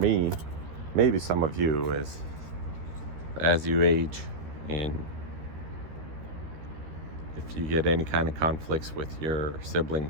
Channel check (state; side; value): late; left; 13 ms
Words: maybe some of you, is as you age and if you get any kind of conflicts with your